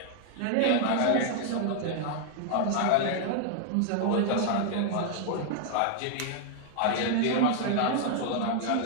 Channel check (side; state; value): both; different; correlation 0.00